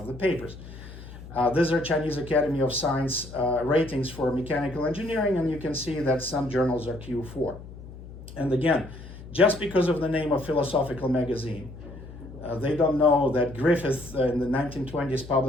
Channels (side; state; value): left; noise; hum, 15 dB below the sound